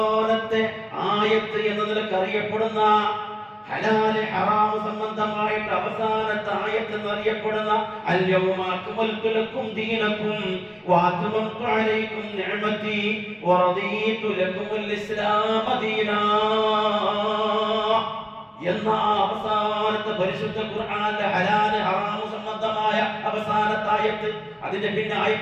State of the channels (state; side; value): identical; both; correlation 1.00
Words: ആയത്ത് എന്ന നിലക്ക് അറിയപ്പെടുന്ന ഹലാൽ ഹറാം സംബന്ധമായിട്ട് അവസാനത്തെ ആയത്ത് എന്നറിയപ്പെടുന്ന അൽയൗമ അക്മൽതു ലക്കും ദീനക്കും വഅത്മംതു അലൈക്കും നിഅമതി വറദീതു ലക്കുമുൽ ഇസ്ലാമ ദീനാ എന്ന അവസാനത്തെ പരിശുദ്ധ ഖുർആനിലെ ഹലാൽ ഹറാം സംബന്ധമായ അവസാനത്തെ ആയത്ത്. അതിന്റെ പിന്നെ